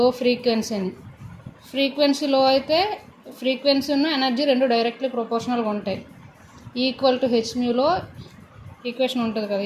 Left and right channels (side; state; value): both; identical; correlation 1.00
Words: ఫ్రీక్వెన్సీ అని. ఫ్రీక్వెన్సీ లో అయితే ఫ్రీక్వెన్సీ ఉన్న ఎనర్జీ రెండు డైరెక్ట్లీ ప్రొపోర్షనల్గా ఉంటాయి. ఈక్వల్ టు హెచ్మ్యూలో ఈక్వేషన్ ఉంటుంది కదా,